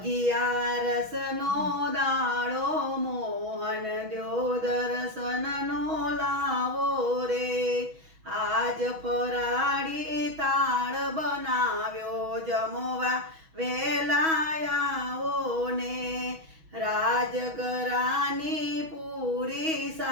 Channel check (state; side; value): late; left; 6.2 ms